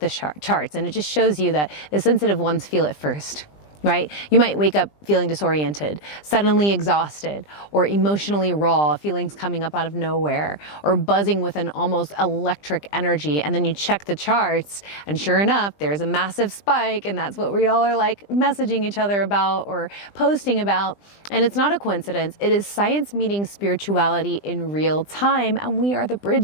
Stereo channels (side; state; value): right; late; 20 ms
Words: charts. And it just shows you that the sensitive ones feel it first. Right? You might wake up feeling disoriented, suddenly exhausted, or emotionally raw, feelings coming up out of nowhere, or buzzing with an almost electric energy. And then you check the charts, and sure enough, there's a massive spike, and that's what we all are like messaging each other about or posting about. And it's not a coincidence. It is science meeting spirituality in real time, and we are the